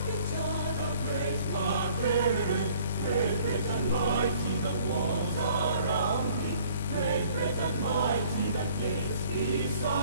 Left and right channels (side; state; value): both; inverted; correlation -0.55